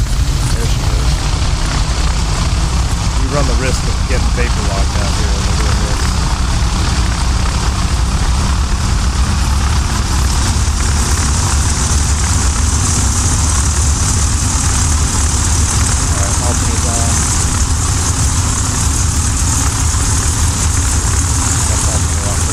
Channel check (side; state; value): both; identical; correlation 1.00